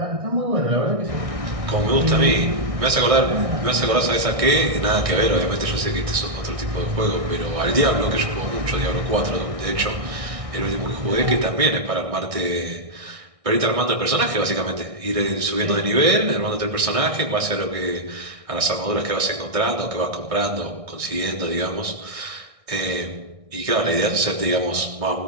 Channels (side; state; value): left; late; 1.6 ms